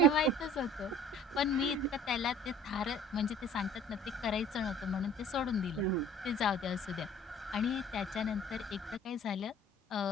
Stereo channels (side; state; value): both; normal; correlation 0.49